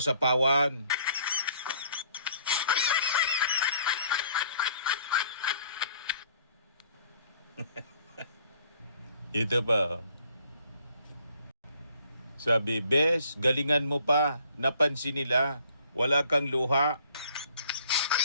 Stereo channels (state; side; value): inverted; both; correlation -0.60